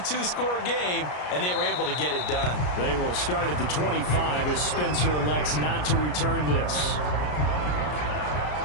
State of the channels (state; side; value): late; right; 33 ms